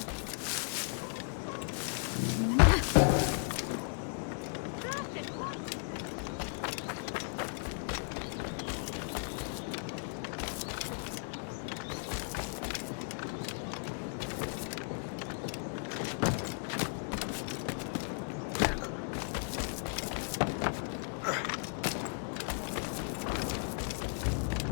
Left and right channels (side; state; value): right; silent; 54 dB below the other